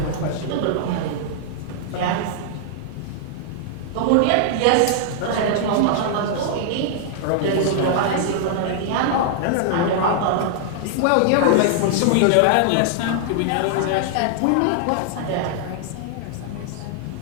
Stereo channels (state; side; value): different; both; correlation -0.01